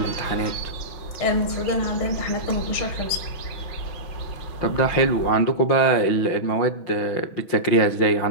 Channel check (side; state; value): right; late; 6.1 ms